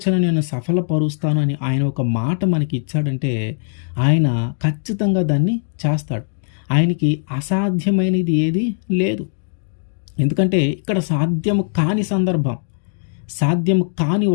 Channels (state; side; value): silent; right; digital silence